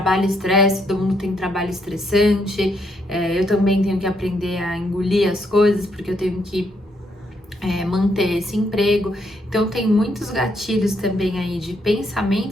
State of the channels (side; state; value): both; normal; correlation 0.74